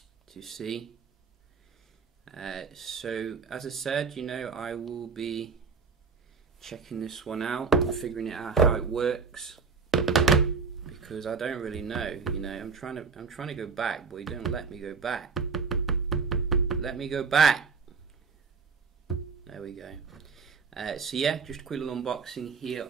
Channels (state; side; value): quieter; left; 5.2 dB